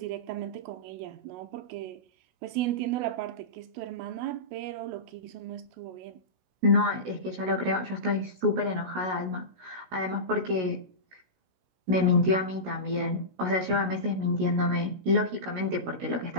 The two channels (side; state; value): left; late; 16 ms